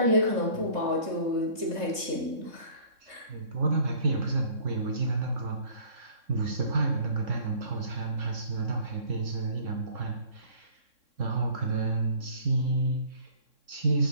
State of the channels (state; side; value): late; left; 3.6 ms